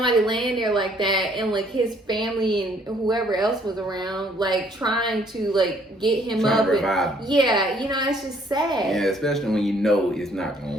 laying there like that, and like his family and whoever else was around, like, trying to, like, get him up to revive him. Yeah, you know, it's just sad. Yeah, especially when you know it's not gonna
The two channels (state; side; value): normal; both; correlation 0.63